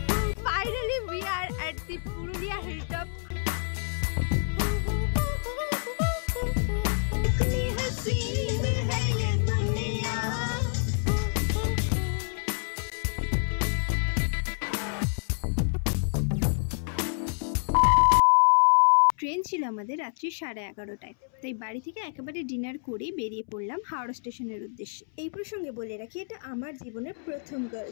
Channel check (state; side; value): silent; right; 59 dB below the other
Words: Finally we are at the Purulia hilltop. Train ছিল আমাদের রাত্রি 11:30টায়, তাই বাড়ি থেকে একেবারে ডিনার করেই বেরিয়ে পড়লাম হাওড়া স্টেশনের উদ্দেশ্যে। এই প্রসঙ্গে বলে রাখি, এটা আমার জীবনের প্রথম